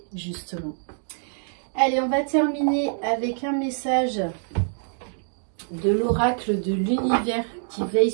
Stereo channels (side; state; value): left; silent; digital silence